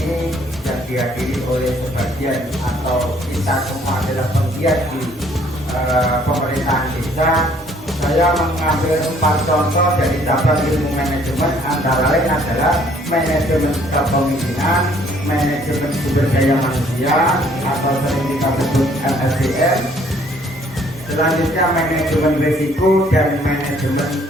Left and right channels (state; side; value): normal; both; correlation 0.62